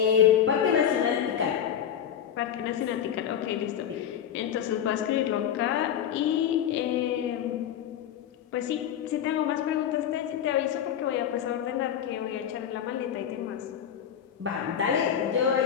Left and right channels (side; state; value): right; quieter; 9.3 dB